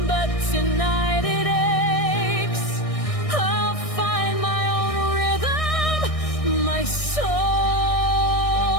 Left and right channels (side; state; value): right; late; 1.6 ms